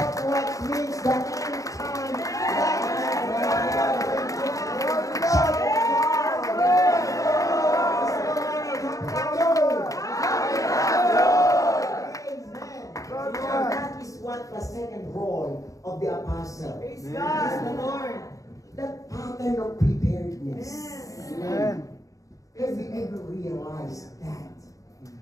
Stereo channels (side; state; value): right; late; 0.16 ms